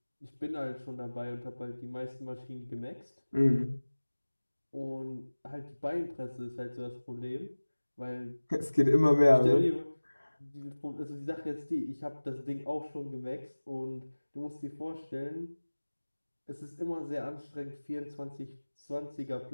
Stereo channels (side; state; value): both; inverted; correlation -1.00